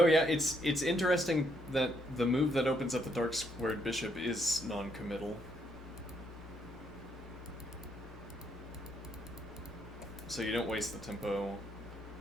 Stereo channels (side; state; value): both; normal; correlation 0.73